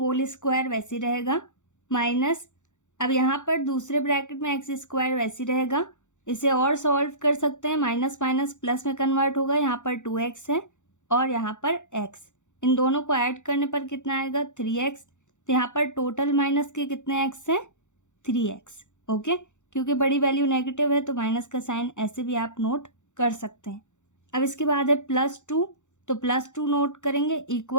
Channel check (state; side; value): late; right; 0.85 ms